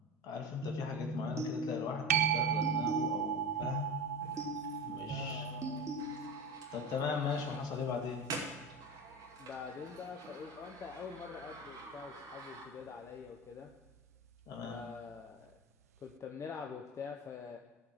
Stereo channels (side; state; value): both; normal; correlation 0.26